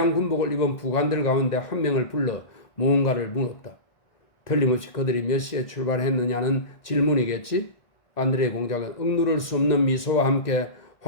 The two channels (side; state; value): right; late; 1.9 ms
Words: 군복을 입은 부관들 가운데 한 명을 불러 무언가를 물었다. 틀림없이 그들이 몇 시에 출발했느냐는 질문이겠지? 안드레 공작은 억누를 수 없는 미소와 함께